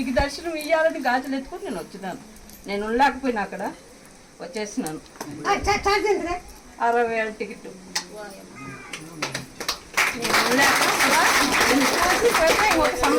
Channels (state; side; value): identical; both; correlation 1.00